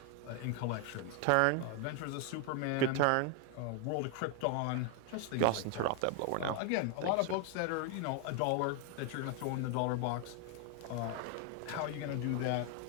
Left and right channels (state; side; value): different; both; correlation 0.01